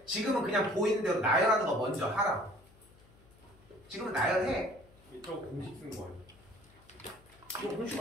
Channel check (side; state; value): left; noise; hum, 26 dB below the sound